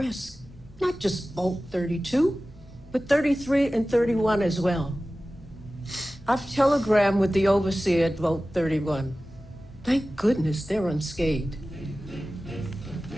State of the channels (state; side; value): normal; both; correlation 0.96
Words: Not just Vault 32, but 33 and 31 as well. I've telegrammed with the overseer at Vault 31. Thank goodness they're unscathed.